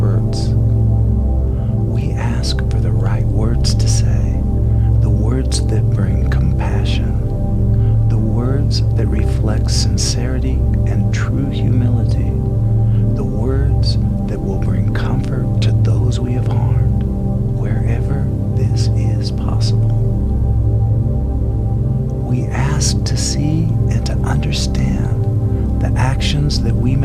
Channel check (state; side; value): identical; both; correlation 1.00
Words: We ask for the right words to say, the words that bring compassion, the words that reflect sincerity and true humility, the words that will bring comfort to those we have harmed, wherever this is possible. We ask to see and to understand the actions that we